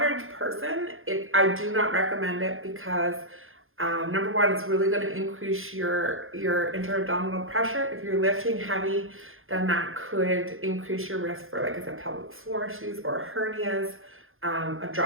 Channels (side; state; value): left; late; 0.60 ms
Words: person, I do not recommend it, because number one, it's really going to increase your intra-abdominal pressure. If you're lifting heavy, then that could increase your risk for, like I said, pelvic floor issues or hernias, a